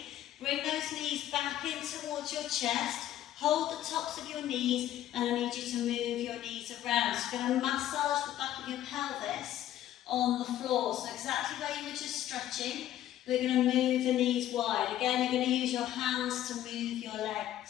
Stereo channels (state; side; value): quieter; right; 12.5 dB